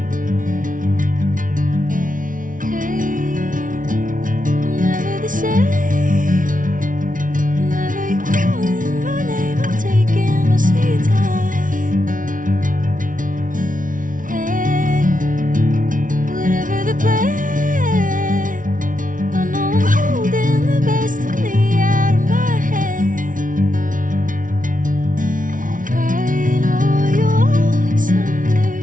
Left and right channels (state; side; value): late; left; 0.38 ms